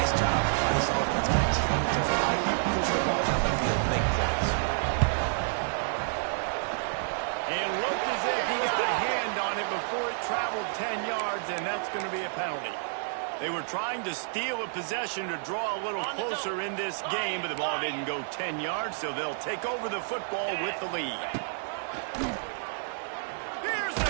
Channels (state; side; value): silent; left; digital silence